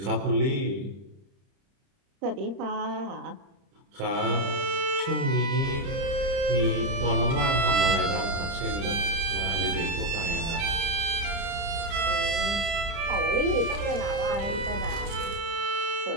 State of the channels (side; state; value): left; late; 30 ms